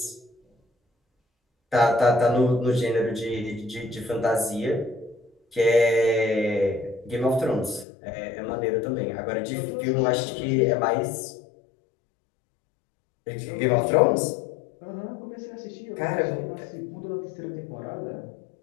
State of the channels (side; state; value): right; drops out; at 7.9 s